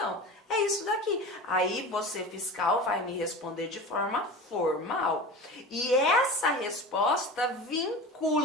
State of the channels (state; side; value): normal; both; correlation 0.32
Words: é isso daqui. Aí você, fiscal, vai me responder de forma formal. E essa resposta